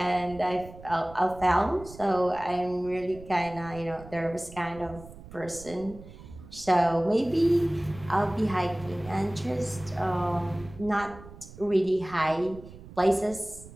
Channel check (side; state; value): right; noise; rumble, 17 dB below the sound